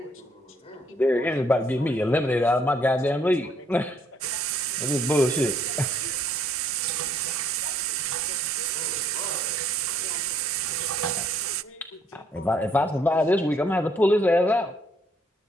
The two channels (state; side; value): normal; both; correlation 0.67